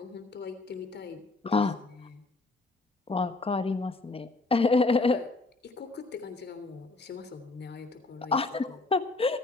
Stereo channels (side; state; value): right; quieter; 3.3 dB